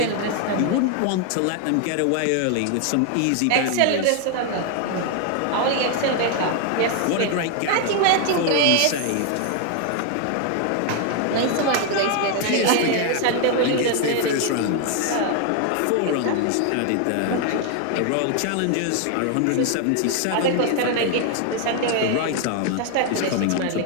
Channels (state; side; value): different; both; correlation 0.00